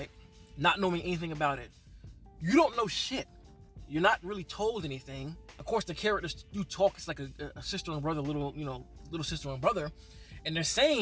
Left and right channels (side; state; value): both; identical; correlation 1.00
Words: not knowing anything about it, you don't know shit. You're not really told anything. Of course, the characters do talk. It's like a sister and brother, little sister and brother, and they're